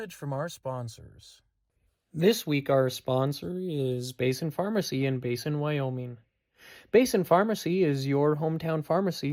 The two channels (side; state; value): both; identical; correlation 1.00